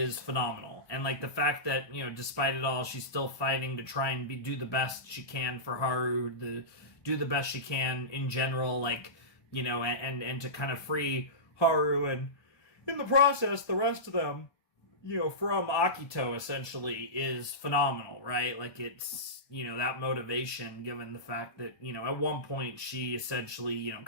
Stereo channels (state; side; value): late; right; 1.2 ms